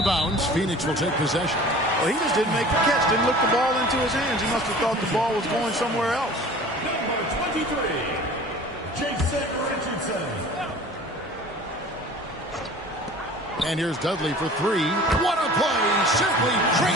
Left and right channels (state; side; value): normal; both; correlation 0.43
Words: bounds. Phoenix will take possession. Well, he just didn't make the catch, didn't look the ball into his hands. He must have thought the ball was going somewhere else. Number 23, Jason Richardson. And here's Dudley for 3. What a play! Simply